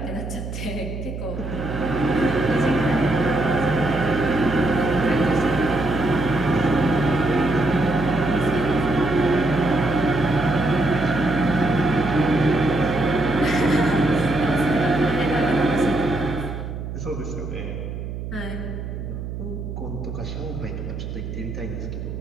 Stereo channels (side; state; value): right; noise; hum, 7 dB below the sound